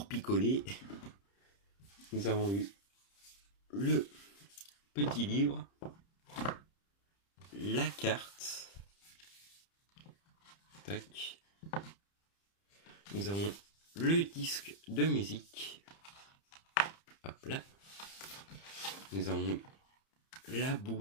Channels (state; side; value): late; right; 30 ms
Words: picoler. Nous avons eu le petit livre, la carte. Tac. Nous avons le disque de musique. Hop là. Nous avons la